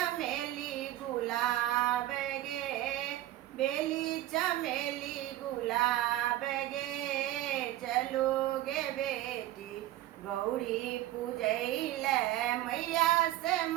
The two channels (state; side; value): quieter; left; 14.7 dB